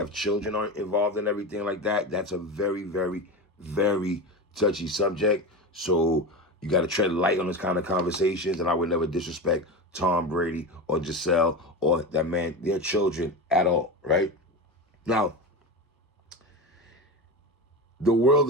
children involved and everything like that. That's a very, very, very touchy subject. So you got to tread light on this kind of conversations, and I would never disrespect Tom Brady or Giselle or that man, their children at all, right? Now, the world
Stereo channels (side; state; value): both; normal; correlation 0.23